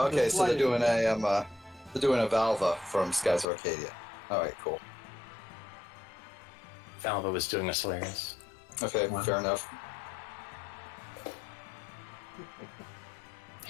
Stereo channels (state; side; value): drops out; right; at 3.5 s